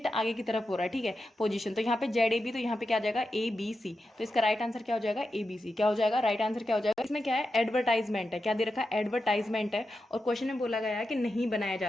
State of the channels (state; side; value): normal; both; correlation 0.89